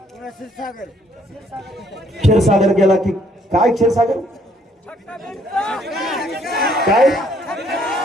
क्षीरसागर गेला की काय? क्षीरसागर काय?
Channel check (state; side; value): normal; both; correlation 0.65